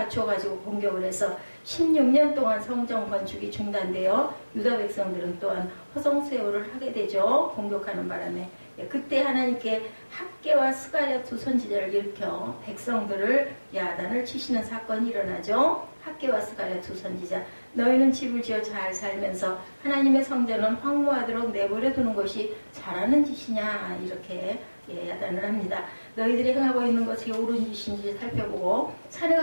공격을 해서 16년 동안 성전 건축이 중단되어 유다 백성들은 또한 허송세월을 하게 되죠. 공격하는 바람에. 그때 하나님께 학개와 스가랴 두 선지자를 일으켜 백성들을 야단을 치시는 사건이 일어나죠. 학개와 스가랴 두 선지자, 너희는 집을 지어 잘 살면서 하나님의 성전은 황무하도록 내버려 두는 것이 잘하는 짓이냐, 이렇게 야단을 합니다. 너희들이 행하고 있는 것이 옳은 짓인지 살펴보고 산에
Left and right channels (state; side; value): inverted; both; correlation -1.00